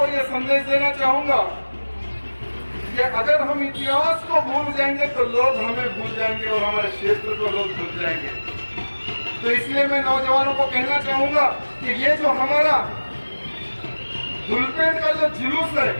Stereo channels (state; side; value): inverted; both; correlation -1.00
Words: यह संदेश देना चाहूंगा कि अगर हम इतिहास को भूल जाएंगे तो लोग हमें भूल जाएंगे और हमारे क्षेत्र को लोग भूल जाएंगे। तो इसलिए मैं नौजवानों को कहना चाहूंगा कि ये जो हमारा धुलपेट का जो जुलूस है,